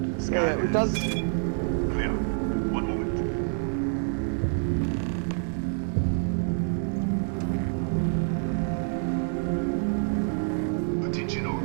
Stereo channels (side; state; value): left; silent; 60 dB below the other